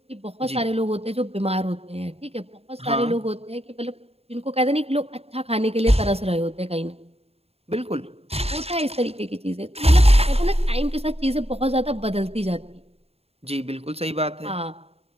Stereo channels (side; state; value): left; late; 0.29 ms